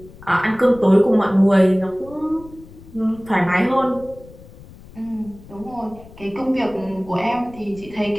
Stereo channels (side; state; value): left; noise; rumble, 20 dB below the sound